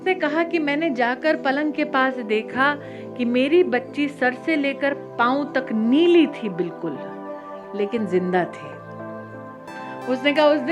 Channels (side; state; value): both; identical; correlation 1.00